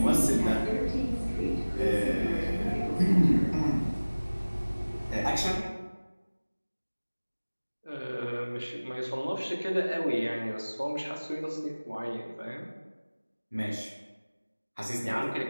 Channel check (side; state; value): both; inverted; correlation -1.00